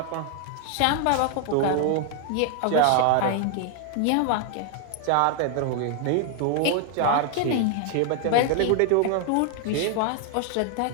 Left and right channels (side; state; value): both; different; correlation 0.00